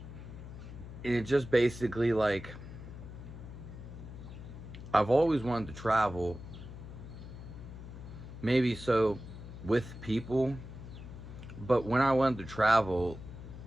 and it just basically like I've always wanted to travel, maybe so with people, but when I wanted to travel,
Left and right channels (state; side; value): noise; left; hum, 12 dB below the sound